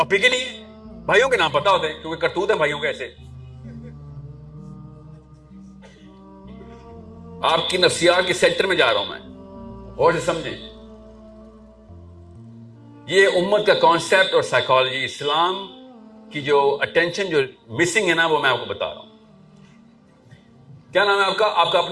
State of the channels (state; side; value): identical; both; correlation 1.00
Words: ہی نہیں ہے. بھائیوں کے نام پتا ہوتے ہیں کیونکہ کرتوت ہیں بھائیوں کے ایسے. آپ کی نفسیات کے سینٹر میں جا رہا ہوں میں, اور سے سمجھیں. یہ امت کا کانسیپٹ اور سائیکالوجی, اسلام کی جو اٹینشن جو مسنگ ہے نا, وہ میں آپ کو بتا رہا ہوں. کیا نام ہے آپ کا؟ آپ کا